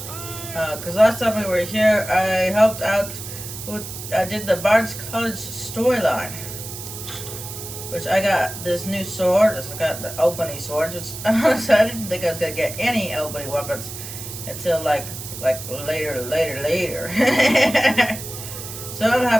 Cause last time we were here I helped out with, I did the Bard's College storyline. Which I got this new sword. I got the Albany sword. Which honestly, I didn't think I was gonna get any Albany weapons until like later. So I'm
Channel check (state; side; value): noise; right; hiss, 10 dB below the sound